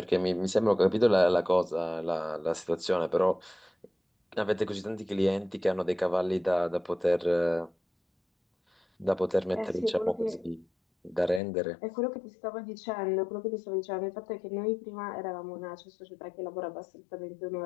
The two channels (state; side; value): drops out; right; at 11.4 s